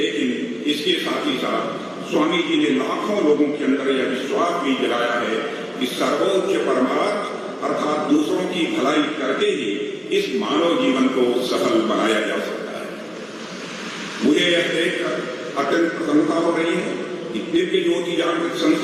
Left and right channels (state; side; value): identical; both; correlation 1.00